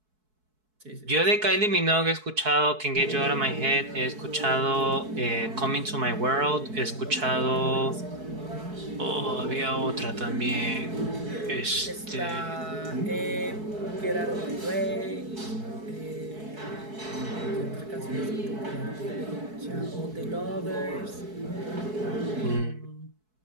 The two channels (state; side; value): late; left; 4.6 ms